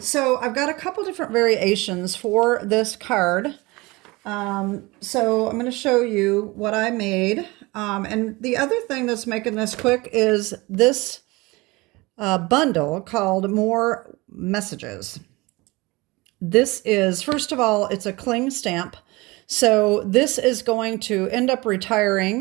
I've got a couple different variations for this card. So I'm going to show you what I made. And the other thing that's making this quick is this bundle called More Messages. This is, first of all, it's a cling stamp. So this is going to end up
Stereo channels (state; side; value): quieter; left; 23.1 dB